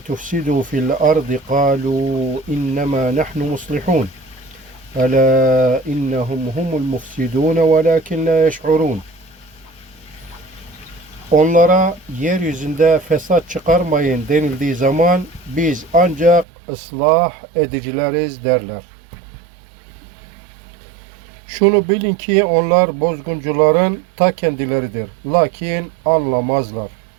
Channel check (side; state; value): left; drops out; at 16.4 s